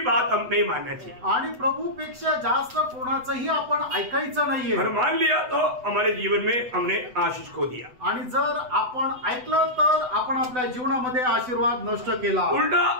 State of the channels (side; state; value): left; late; 8.0 ms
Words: बात हम नहीं मानना चाहिए। आणि प्रभूपेक्षा जास्त कोणाचंही आपण ऐकायचं नाहीये। और मान लिया तो हमारे जीवन में हमने आशीष खो दिया। आणि जर आपण ऐकलं तर आपण आपल्या जीवनामध्ये आशीर्वाद नष्ट केला। उलटा